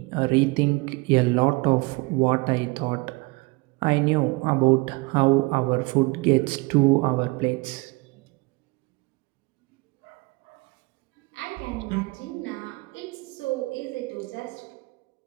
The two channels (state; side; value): quieter; left; 25.7 dB